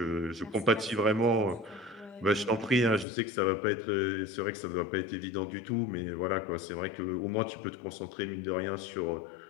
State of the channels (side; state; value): right; drops out; at 3.1 s